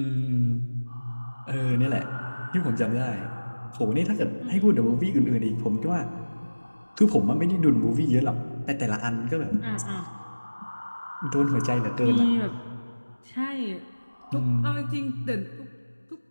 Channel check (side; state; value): both; inverted; correlation -1.00